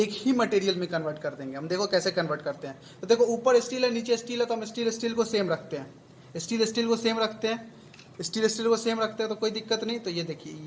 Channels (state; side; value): identical; both; correlation 1.00